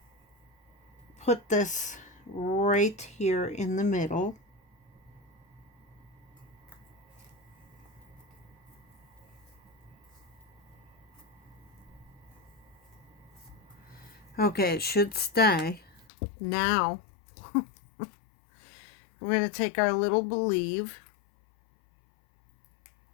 put this right here in the middle. Okay, it should stay. Now, we're going to take our little Believe,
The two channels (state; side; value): drops out; right; at 16.1 s